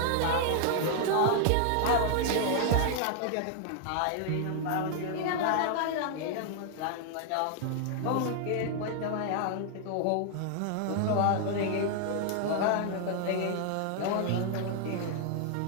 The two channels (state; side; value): different; both; correlation -0.01